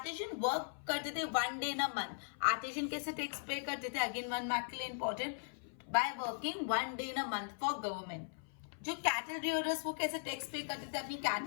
वर्क करते थे 1 day in a month. Artisan कैसे टैक्स पे करते थे? अगेन 1 मार्क के लिए important, by working 1 day in a month for government. जो कैटल रियरर्स वो कैसे टैक्स पे करते थे? अपनी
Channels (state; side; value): silent; right; 52 dB below the other